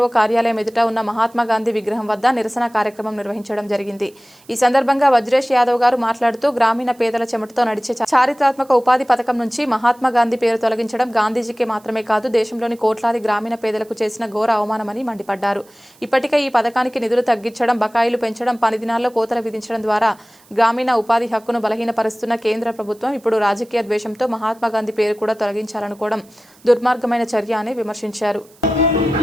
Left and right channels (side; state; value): right; noise; hiss, 29 dB below the sound